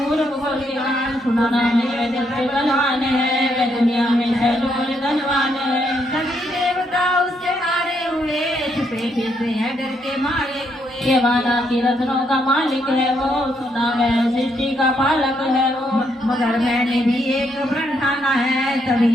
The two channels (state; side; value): normal; both; correlation 0.75